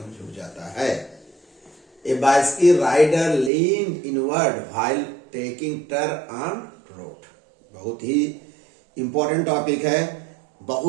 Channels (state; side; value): drops out; left; at 3.5 s